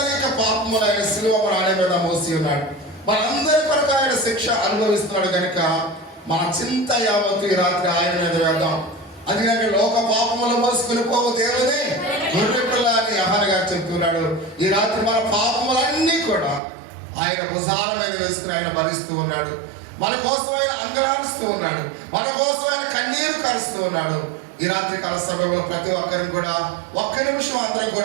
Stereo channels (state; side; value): drops out; left; at 16.6 s